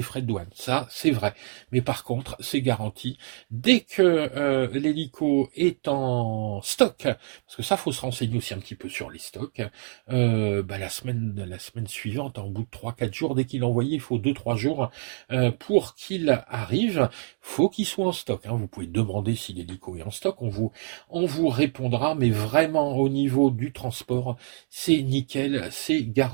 frais de douane, ça c'est vrai. Mais par contre, c'est garanti. Dès que l'hélico est en stock, parce que ça, faut se renseigner aussi un petit peu sur les stocks, la semaine suivante, en bout de 3-4 jours, dès qu'il est envoyé, il faut 2-3 jours pour qu'il arrive. Faut qu'il soit en stock, hein. Vous pouvez demander si l'hélico est en stock, on vous répondra, mais vraiment au niveau du transport, c'est nickel, c'est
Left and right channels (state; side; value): silent; left; digital silence